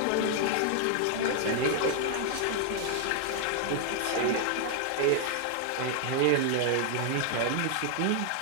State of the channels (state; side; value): different; both; correlation 0.00